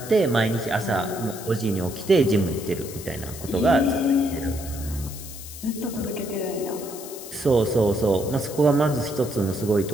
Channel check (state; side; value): noise; left; hiss, 13 dB below the sound